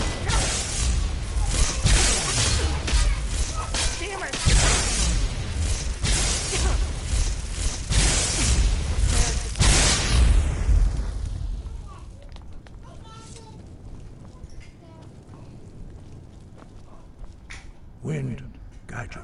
Damn it! Wind, guide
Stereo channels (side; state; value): both; identical; correlation 1.00